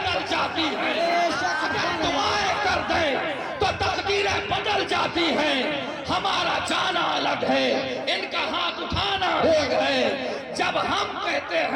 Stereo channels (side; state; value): both; identical; correlation 1.00